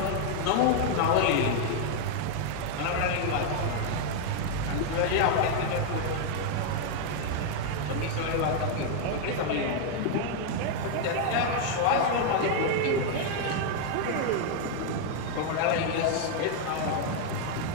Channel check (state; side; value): different; both; correlation 0.00